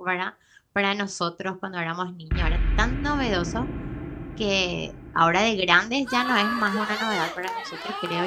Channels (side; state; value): both; identical; correlation 1.00